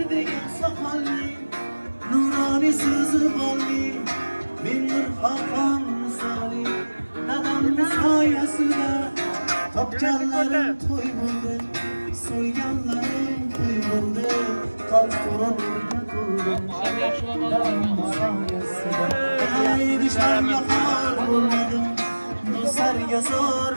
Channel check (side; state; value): both; inverted; correlation -1.00